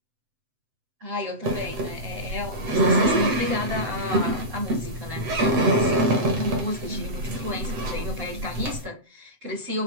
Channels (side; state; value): left; late; 7.8 ms